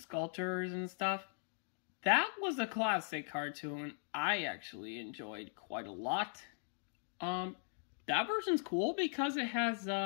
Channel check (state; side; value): silent; right; digital silence